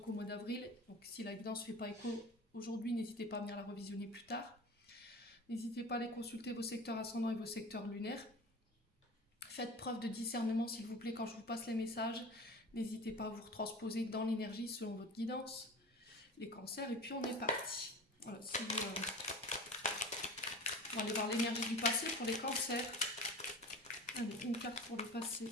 qu'au mois d'avril. Donc si la guidance ne fait pas écho aujourd'hui, n'hésitez pas à venir la revisionner plus tard. N'hésitez pas à aller consulter vos secteurs ascendants et vos secteurs lunaires. Faites preuve de discernement, s'il vous plaît, quand je vous passe les messages. N'hésitez pas à vous retransposer dans l'énergie selon votre guidance. Les cancers, et puis on est parti. Voilà, si on va aller voir l'énergie du passé pour les cancers. Allez, une carte pour le passé.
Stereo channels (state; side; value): normal; both; correlation 0.35